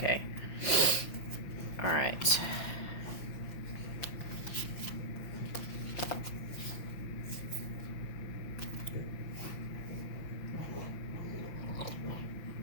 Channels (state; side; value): late; right; 5.9 ms